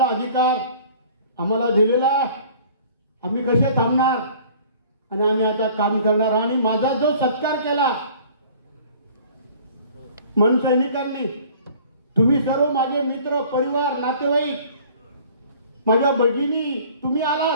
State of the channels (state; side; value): inverted; both; correlation -0.50